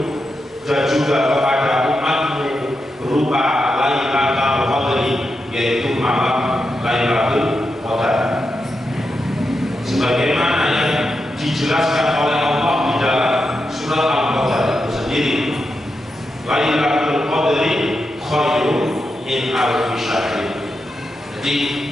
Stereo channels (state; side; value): normal; both; correlation 0.87